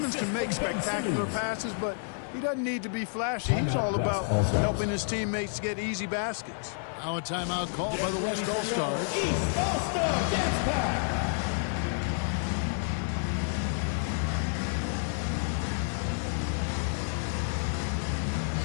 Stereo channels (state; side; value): silent; right; 58 dB below the other